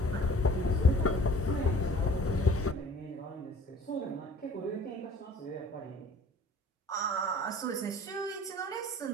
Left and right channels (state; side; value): normal; both; correlation 0.50